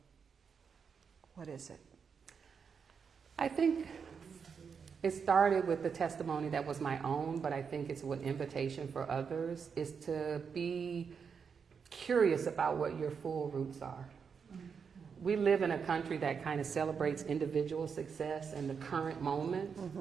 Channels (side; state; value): left; quieter; 6.2 dB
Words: what is it? I think it started with the testimony that was my own, but I think it's an invitation for others, is to be curious about what your full roots are. We live in a country that kind of celebrates individual success in the current moment.